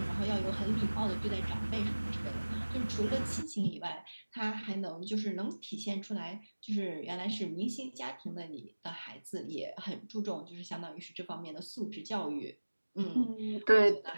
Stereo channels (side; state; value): both; inverted; correlation -1.00